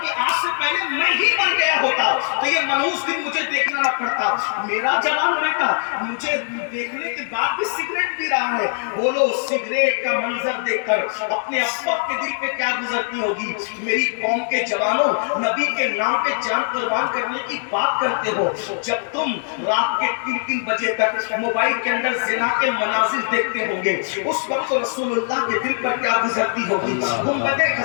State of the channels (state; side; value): silent; right; digital silence